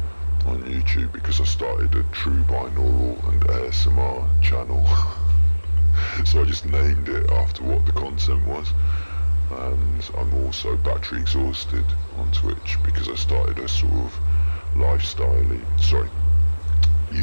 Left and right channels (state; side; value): inverted; both; correlation -1.00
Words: on YouTube because I started a True Binaural and ASMR channel. So I just named it after what the content was. And I'm also battery exhausted on Twitch because I started a sort of